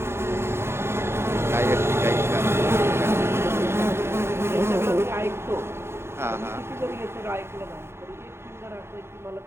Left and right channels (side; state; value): left; late; 0.12 ms